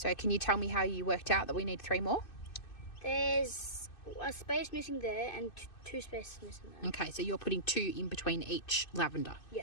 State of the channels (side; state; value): right; late; 2.6 ms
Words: can you tell me how you worked out that we need 3 more? There's a space missing there and 2 spaces missing there. Okay, so you're putting 2 in between each lavender.